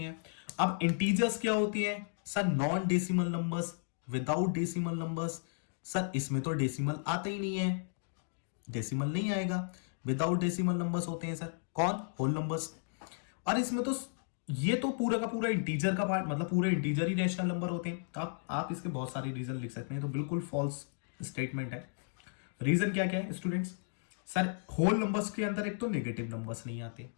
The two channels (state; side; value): silent; right; digital silence